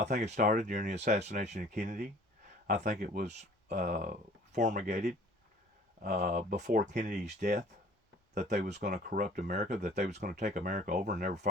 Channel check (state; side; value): normal; both; correlation 0.51